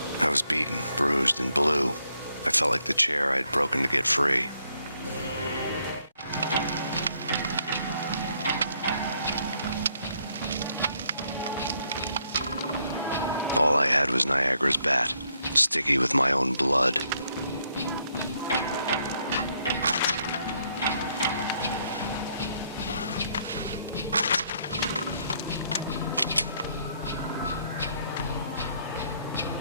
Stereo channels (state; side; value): inverted; both; correlation -0.72